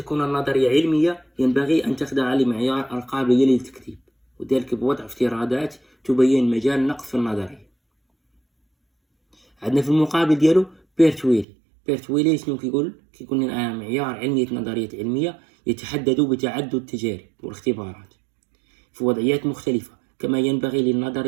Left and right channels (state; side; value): drops out; left; at 11.5 s